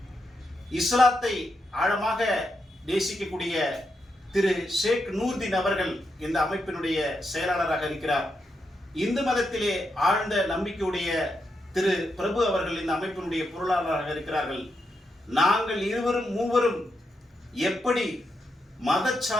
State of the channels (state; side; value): normal; both; correlation 0.84